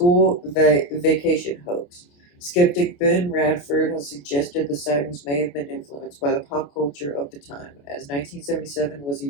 vacation hoax. Skeptic Ben Radford has suggested the sightings may have been influenced by the pop culture of the time, as 1977 was a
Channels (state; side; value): late; right; 28 ms